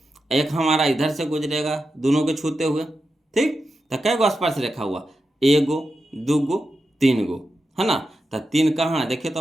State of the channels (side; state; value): both; normal; correlation 0.89